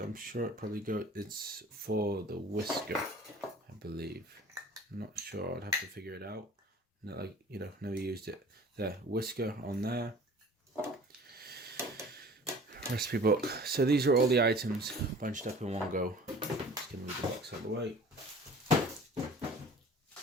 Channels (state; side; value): normal; both; correlation 0.47